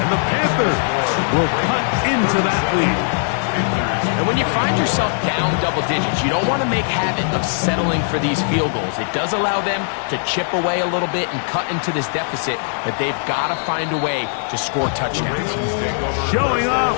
the Panthers will cut into that lead. And when you find yourself down double digits, you don't want to make habit of settling for these field goals. It does allow them to chip away a little bit and cut into this deficit, but they've got to find a way to score touchdowns. Showing off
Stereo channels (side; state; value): right; silent; digital silence